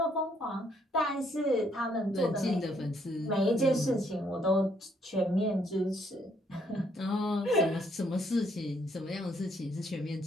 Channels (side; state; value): both; normal; correlation 0.69